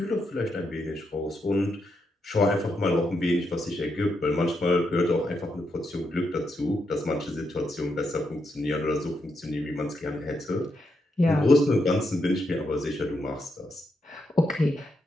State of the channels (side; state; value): both; normal; correlation 0.82